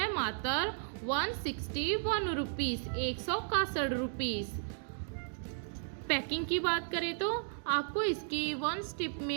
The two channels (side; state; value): left; silent; digital silence